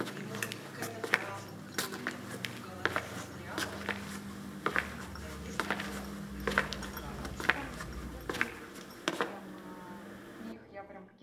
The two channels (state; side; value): identical; both; correlation 1.00